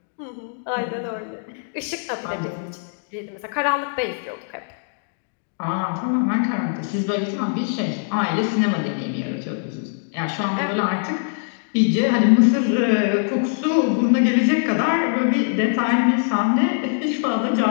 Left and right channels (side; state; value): right; silent; digital silence